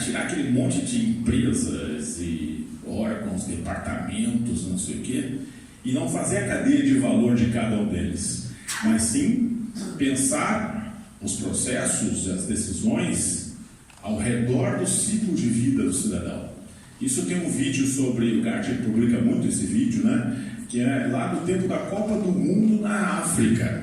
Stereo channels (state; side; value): identical; both; correlation 1.00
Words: tirar aquele monte de empresas e órgãos, departamentos, não sei o quê, e não fazer a cadeia de valor de cada um deles, mas sim pensar os processos, as decisões ao redor do ciclo de vida do cidadão. Isso tem um vídeo sobre, o Gartner publica muito esse vídeo, né, que é lá no tempo da Copa do Mundo na